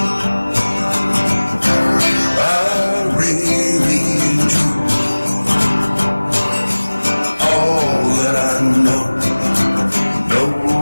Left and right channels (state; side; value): inverted; both; correlation -1.00